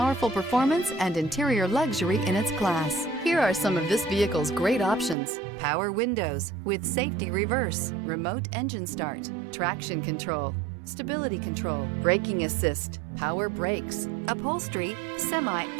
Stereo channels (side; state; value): left; drops out; at 5.2 s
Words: performance and interior luxury in its class. Here are some of this vehicle's great options: power windows with safety reverse, remote engine start, traction control, stability control, braking assist, power brakes, upholstery,